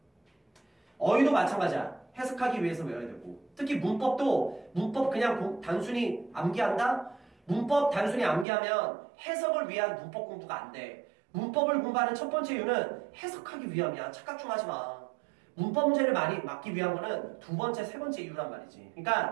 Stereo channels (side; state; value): left; drops out; at 8.5 s